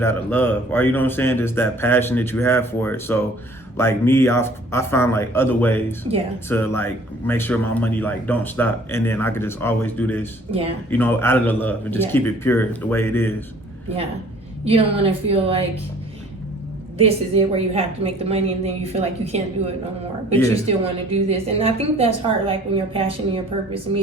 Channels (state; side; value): normal; both; correlation 0.53